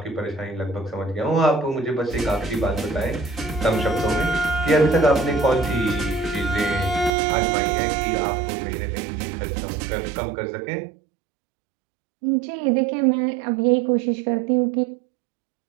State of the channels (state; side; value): drops out; left; at 7.1 s